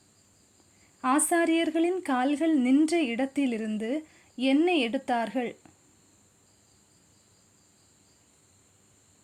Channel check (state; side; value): identical; both; correlation 1.00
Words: ஆசாரியர்களின் கால்கள் நின்ற இடத்திலிருந்து என்ன எடுத்தார்கள்?